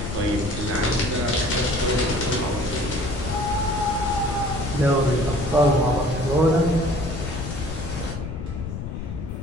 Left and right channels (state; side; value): noise; left; rumble, 6 dB below the sound